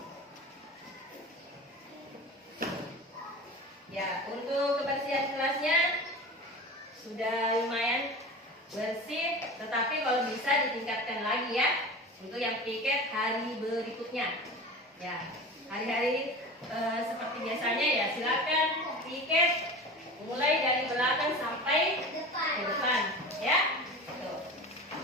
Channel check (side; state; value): both; normal; correlation 0.33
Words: Ya, untuk kebersihan kelasnya sudah lumayan bersih, tetapi kalau bisa ditingkatkan lagi ya untuk yang piket hari berikutnya. Ya, hari-hari seperti biasanya ya silakan piket mulai dari belakang sampai ke depan, ya. Tuh.